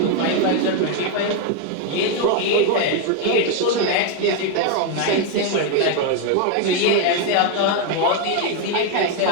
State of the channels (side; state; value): both; different; correlation 0.01